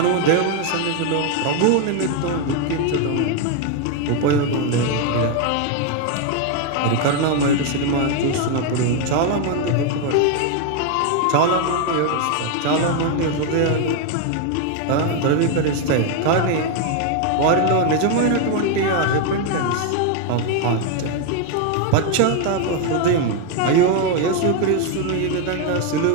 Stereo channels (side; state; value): both; different; correlation 0.01